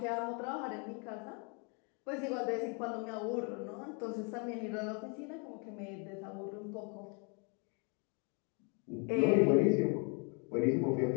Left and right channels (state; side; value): quieter; right; 35.8 dB